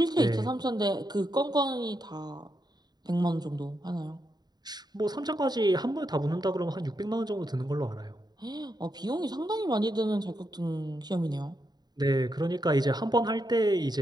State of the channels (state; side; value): late; left; 0.20 ms